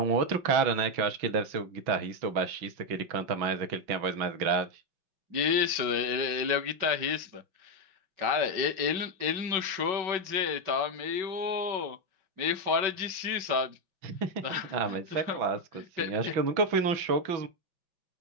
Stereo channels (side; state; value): left; late; 5.3 ms